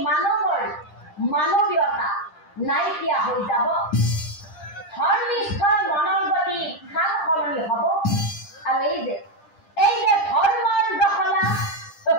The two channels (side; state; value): right; late; 10 ms